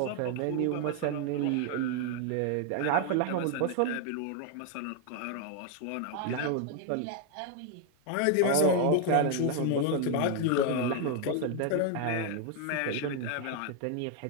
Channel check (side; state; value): both; different; correlation 0.00